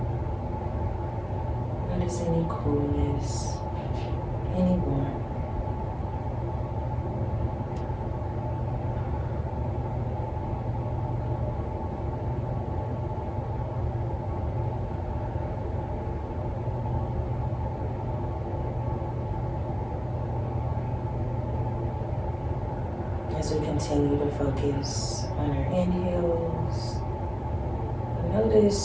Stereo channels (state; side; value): identical; both; correlation 1.00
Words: Notice any coolness, any as we continue to focus on our inhales,